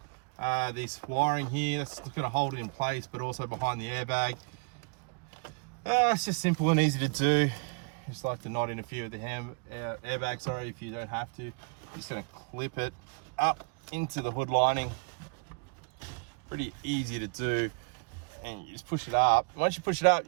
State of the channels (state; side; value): quieter; left; 36.2 dB